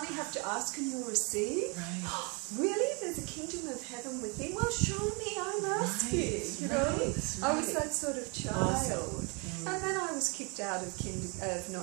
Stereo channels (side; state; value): left; quieter; 32.8 dB